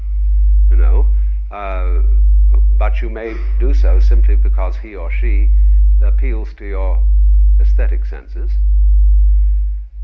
you know, but you may do so simply because he or she appeals to your aesthetic senses.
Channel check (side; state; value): both; identical; correlation 1.00